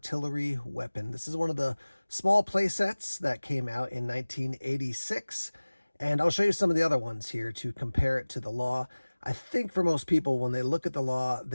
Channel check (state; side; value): inverted; both; correlation -1.00